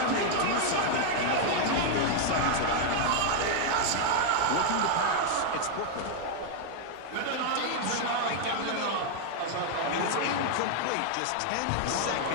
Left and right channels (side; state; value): both; different; correlation 0.00